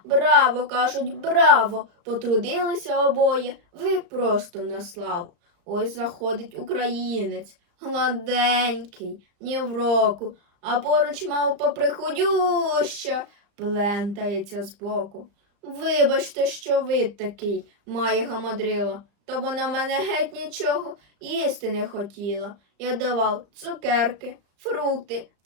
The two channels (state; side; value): late; left; 34 ms